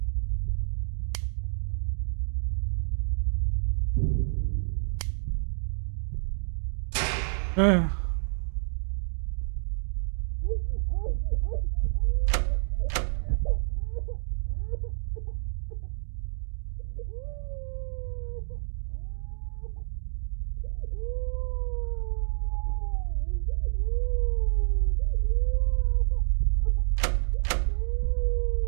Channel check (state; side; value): silent; left; digital silence